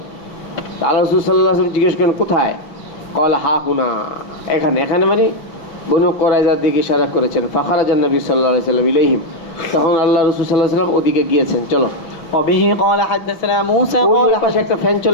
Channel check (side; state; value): right; late; 6.0 ms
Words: আল্লাহ রাসূল সাল্লাল্লাহু আলাইহি ওয়াসাল্লাম জিজ্ঞেস করেন, কোথায়? ক্বালা হা হুনা, এখানে। এখানে মানে বনু কুরাইজার দিকে ইশারা করেছেন। ফাখারাজান নবী সাল্লাল্লাহু আলাইহি ওয়াসাল্লাম ইলাইহিম, তখন আল্লাহ রাসূল সাল্লাল্লাহু আলাইহি ওয়াসাল্লাম ওদিকে গিয়েছেন। চলো। وبه قال حدثنا موسى قال পাশে একটা ফ্যান